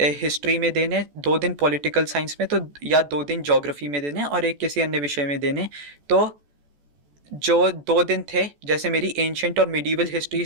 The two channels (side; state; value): left; late; 14 ms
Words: में देने, 2 दिन पॉलिटिकल साइंस में, तो या 2 दिन ज्योग्राफी में देने और एक किसी अन्य विषय में देने। तो जो 2 दिन थे, जैसे मेरी एंशंट और मिडीवल हिस्ट्री